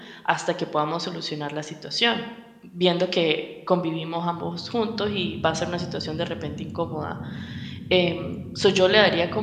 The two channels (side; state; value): both; identical; correlation 1.00